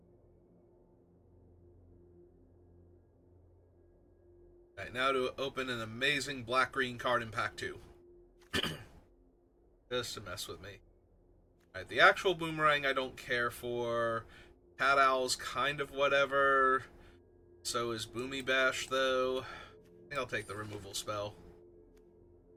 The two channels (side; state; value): both; identical; correlation 1.00